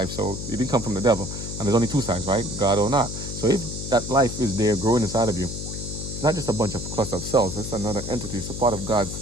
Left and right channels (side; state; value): left; noise; hum, 7 dB below the sound